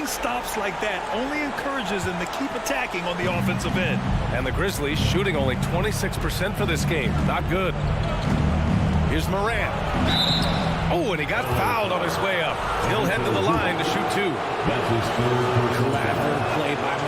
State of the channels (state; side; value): identical; both; correlation 1.00